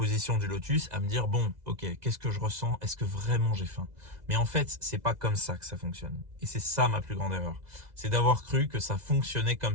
du lotus à me dire, bon, ok, qu'est-ce que je ressens? Est-ce que vraiment j'ai faim? Mais en fait, c'est pas comme ça que ça fonctionne. Et c'est ça ma plus grande erreur. C'est d'avoir cru que ça fonctionnait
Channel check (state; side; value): late; left; 2.0 ms